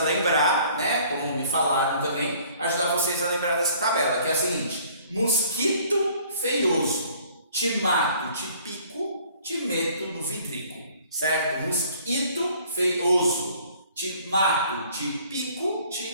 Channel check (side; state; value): both; inverted; correlation -0.56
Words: né? Como me falaram também, ajudar vocês a lembrar dessa tabela, que é a seguinte: mosquito feioso, te mato, te pico, te meto no vidrico, certo? Mosquito feioso, te mato, te pico,